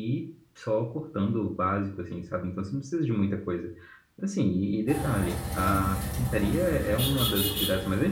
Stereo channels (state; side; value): identical; both; correlation 1.00